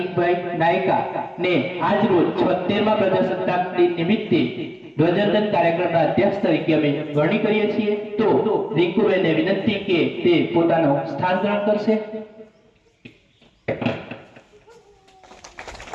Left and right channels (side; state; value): both; identical; correlation 1.00